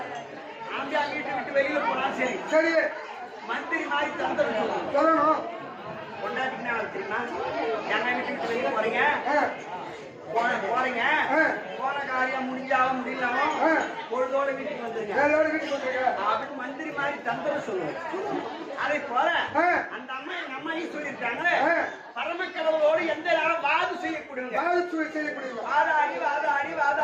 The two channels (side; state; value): both; identical; correlation 1.00